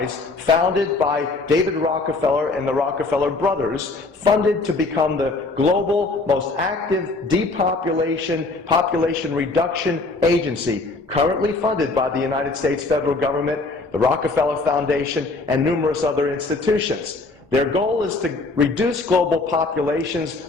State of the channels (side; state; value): right; quieter; 3.5 dB